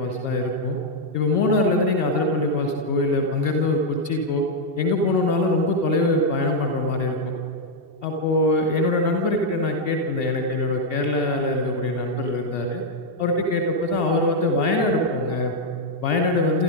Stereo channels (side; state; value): left; late; 2.7 ms